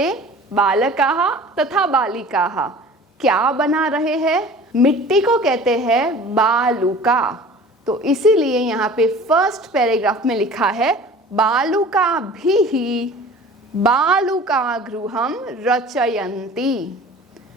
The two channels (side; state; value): both; normal; correlation 0.43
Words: बालकाः तथा बालिकाः क्या बना रहे हैं? मिट्टी को कहते हैं बालुका। तो इसीलिए यहाँ पे फर्स्ट पैराग्राफ में लिखा है बालुकाभिः बालुकागृहं रचयन्ति।